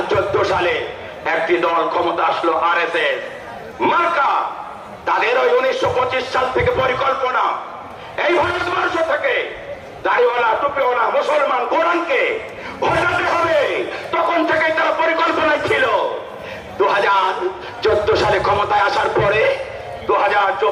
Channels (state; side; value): identical; both; correlation 1.00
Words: সালে একটি দল ক্ষমতা আসলো, আরএসএস মার্কা। তাদের ওই 1925 সাল থেকে পরিকল্পনা এই ভারতবর্ষ থেকে দাড়িওয়ালা টুপিওয়ালা মুসলমান কোরআনকে হটাতে হবে। তখন থেকেই তারা পরিকল্পনায় ছিল। 2014 সালে ক্ষমতায় আসার পরে